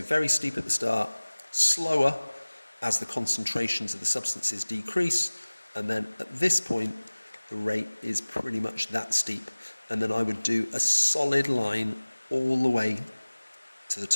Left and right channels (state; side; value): inverted; both; correlation -1.00